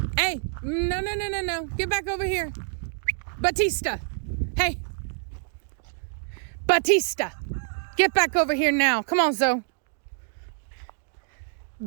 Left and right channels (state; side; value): silent; left; digital silence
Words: Hey, no. Get back over here. Batista. Hey. Batista. Get back over here now. Come on, Zoe.